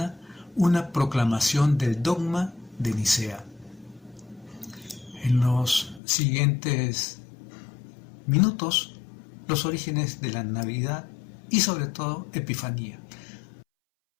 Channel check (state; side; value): drops out; right; at 6.0 s